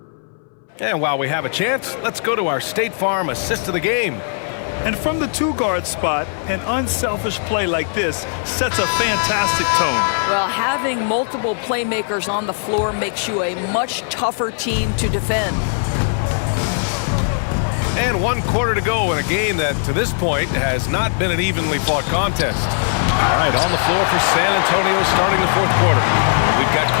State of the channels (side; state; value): right; silent; 63 dB below the other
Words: And while we have a chance, let's go to our State Farm assist of the game. And from the two-guard spot, an unselfish play like this sets a fantastic tone. Well, having multiple playmakers on the floor makes you a much tougher team to defend. And 1 quarter to go in a game that, to this point, has not been an evenly fought contest. All right, on the floor for San Antonio starting the fourth quarter. We've got